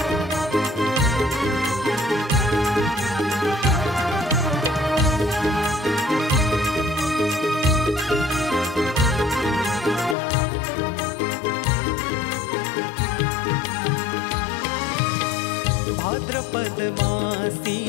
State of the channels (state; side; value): drops out; right; at 10.2 s